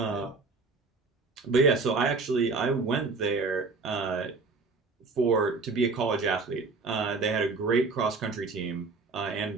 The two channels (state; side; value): quieter; left; 4.1 dB